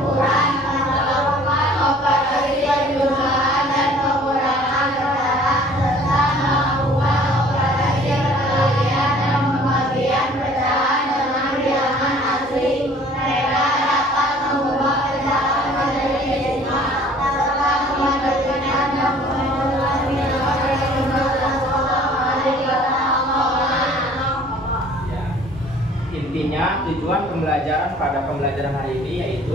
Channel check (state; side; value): normal; both; correlation 0.53